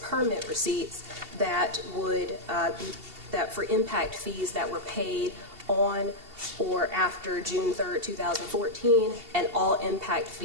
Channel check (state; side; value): late; left; 2.7 ms